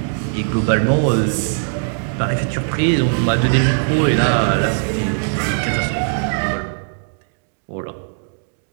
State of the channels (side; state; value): left; silent; digital silence